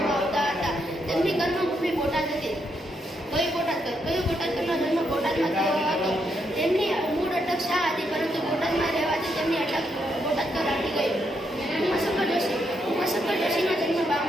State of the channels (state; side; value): normal; both; correlation 0.79